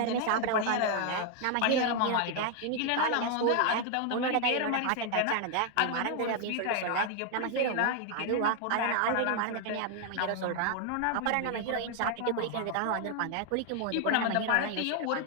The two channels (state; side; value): different; both; correlation 0.00